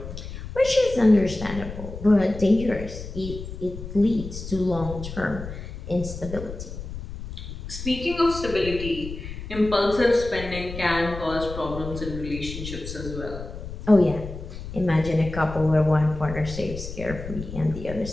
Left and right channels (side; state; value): left; noise; rumble, 10 dB below the sound